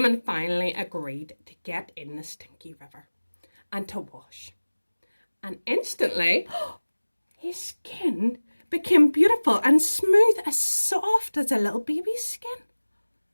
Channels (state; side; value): inverted; both; correlation -1.00